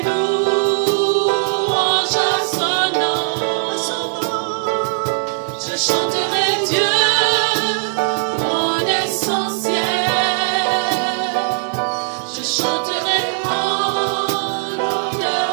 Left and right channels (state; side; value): silent; left; 60 dB below the other